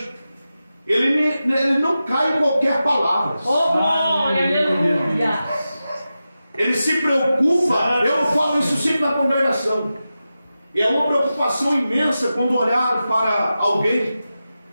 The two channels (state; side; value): inverted; both; correlation -0.92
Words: ele não cai em qualquer palavra. Oh, glória, aleluia. Ele se preocupa. Eu falo isso sempre na congregação. E é uma preocupação imensa quando olhar para alguém